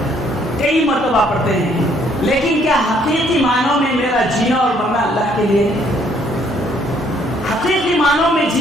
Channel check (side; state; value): both; normal; correlation 0.65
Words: کئی مرتبہ پڑھتے ہیں، لیکن کیا حقیقی معنوں میں میرا جینا اور مرنا اللہ کے لیے؟ حقیقی معنوں میں